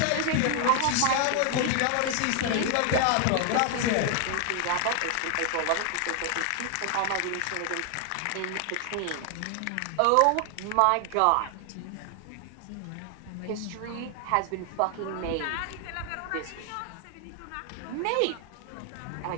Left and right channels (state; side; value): different; both; correlation 0.00